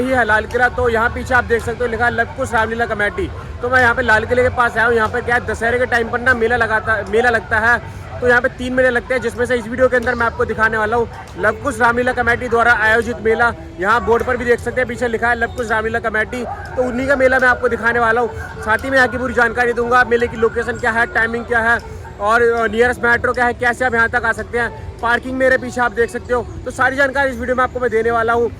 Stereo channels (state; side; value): identical; both; correlation 1.00